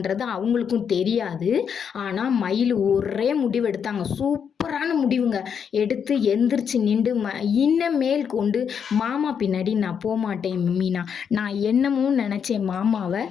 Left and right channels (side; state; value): right; quieter; 7.3 dB